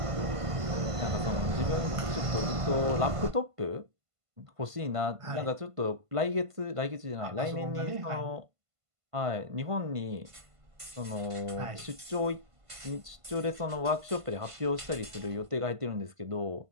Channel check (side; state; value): left; late; 1.5 ms